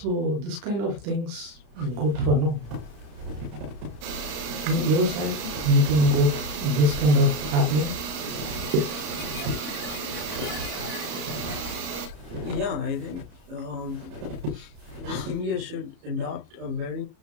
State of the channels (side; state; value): left; late; 33 ms